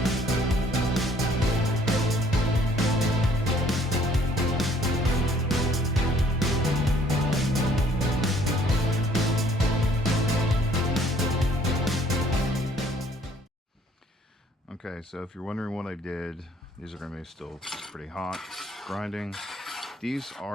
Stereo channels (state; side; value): normal; both; correlation 0.61